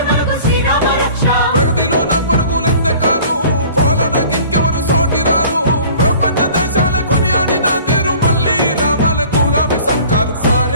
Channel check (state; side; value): inverted; both; correlation -0.47